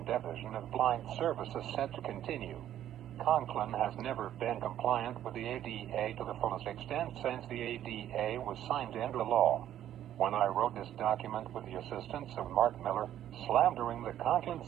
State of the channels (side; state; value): left; quieter; 11.5 dB